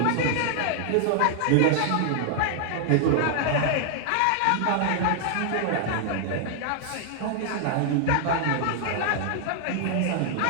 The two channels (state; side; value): different; both; correlation 0.00